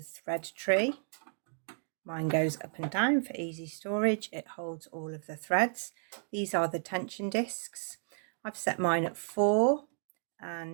thread tree. Mine goes up and down for easy storage. It holds all of the threads. These are the tension discs. I've set mine at 4,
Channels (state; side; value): silent; left; digital silence